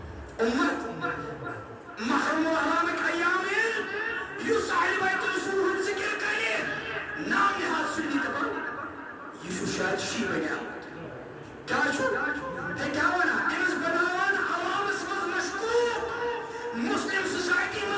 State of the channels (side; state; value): both; identical; correlation 1.00